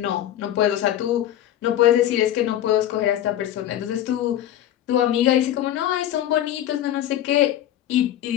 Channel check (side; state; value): right; quieter; 12.0 dB